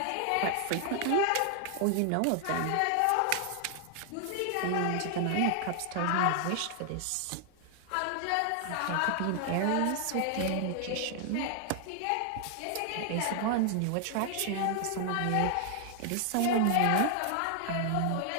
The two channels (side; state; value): both; different; correlation 0.00